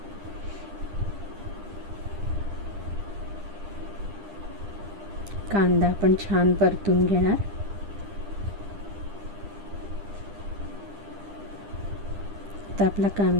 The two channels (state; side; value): late; left; 10 ms